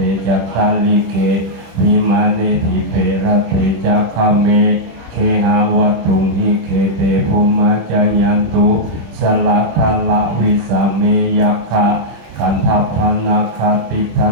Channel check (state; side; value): late; left; 26 ms